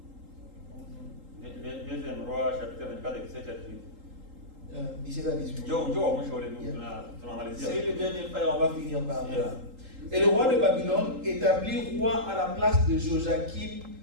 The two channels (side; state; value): left; late; 3.8 ms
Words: Deuxième roi chapitre 24 et 17 à 18. 17 à 18. Njoo wa mwisho ule tunamalizia. C'est le dernier frère, on va finir par là. Yeah. Et le roi de Babylone établit roi à la place de Joachim